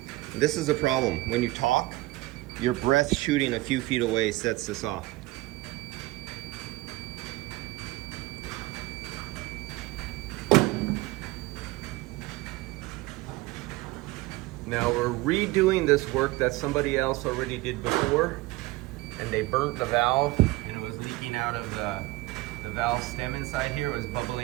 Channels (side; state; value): left; quieter; 20.0 dB